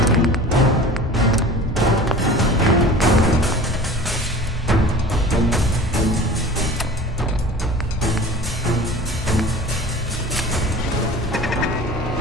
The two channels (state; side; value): normal; both; correlation 0.40